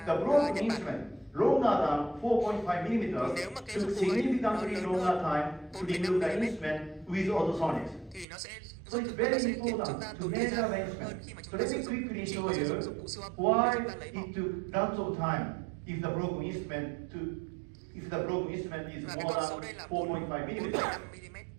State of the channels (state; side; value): drops out; left; at 8.2 s